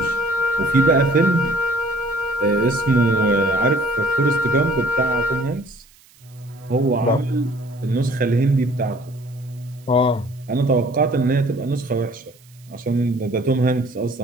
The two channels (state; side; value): noise; right; hiss, 29 dB below the sound